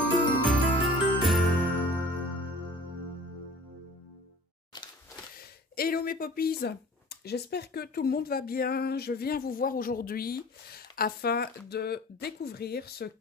mes poppies, j'espère que tout le monde va bien. Je viens vous voir aujourd'hui afin de découvrir ce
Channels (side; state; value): both; normal; correlation 0.45